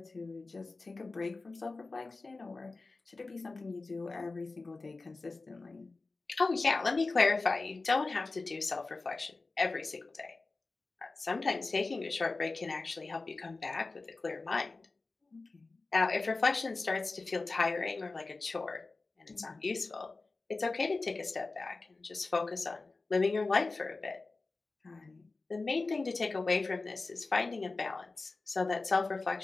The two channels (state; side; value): quieter; right; 3.6 dB